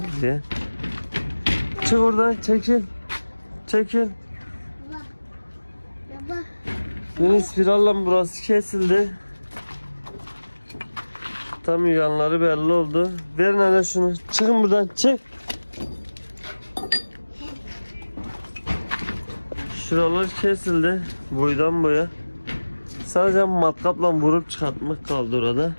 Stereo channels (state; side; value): inverted; both; correlation -1.00